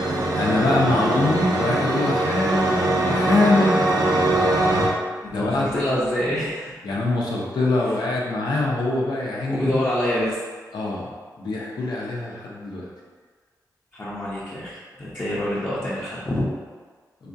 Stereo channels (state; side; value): normal; both; correlation 0.79